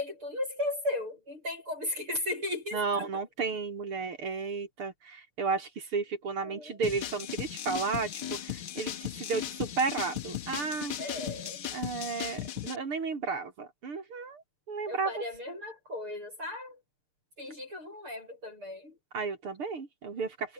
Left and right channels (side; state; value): left; late; 6.6 ms